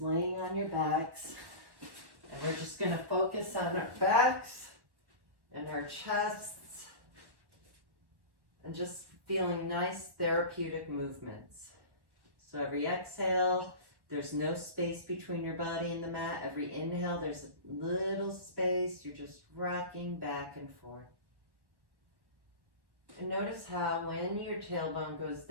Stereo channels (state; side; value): late; left; 1.1 ms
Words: laying on your backs. And we're just going to focus on our backs and our chests and just feeling nice therapeutic movements. So every exhale, there's no space between your body and the mat. Every inhale, there's a little space. You're just rocking back and forth. And notice how when your tailbone goes